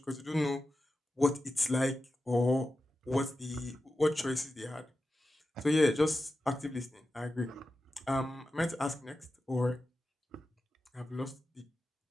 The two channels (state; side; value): normal; both; correlation 0.92